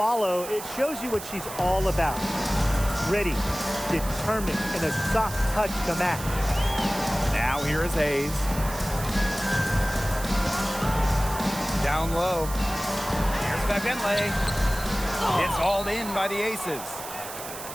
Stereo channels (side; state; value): right; noise; hiss, 11 dB below the sound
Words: it shows you what she's all about. Ready, determined, and a soft touch to match. Now here is Hayes. Down low. Here's Bentley. It's hauled in by the Aces.